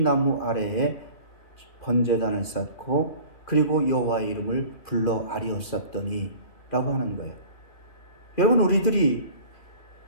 나무 아래에 번제단을 쌓고 그리고 여호와의 이름을 불러 아리었었더니 라고 하는 거예요. 여러분, 우리들이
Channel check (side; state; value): right; late; 2.8 ms